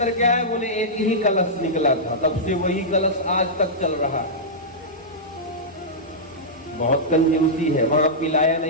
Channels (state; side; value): normal; both; correlation -0.12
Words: क्या है? बोले एक ही कलश निकला था, तब से वही कलश आज तक चल रहा है। बहुत कंजूसी है, वहां पिलाया